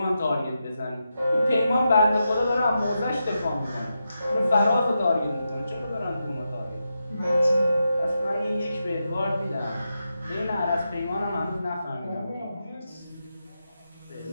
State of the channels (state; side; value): inverted; both; correlation -0.87